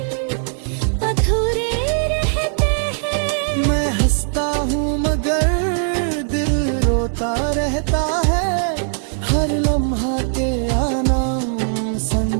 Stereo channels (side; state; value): left; silent; digital silence